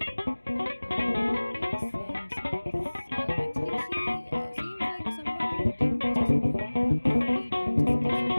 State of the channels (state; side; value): inverted; both; correlation -1.00